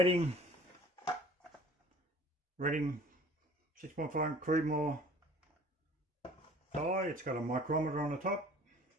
6.5 Creedmoor dye. It's got a micrometer on the top.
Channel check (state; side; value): normal; both; correlation 0.48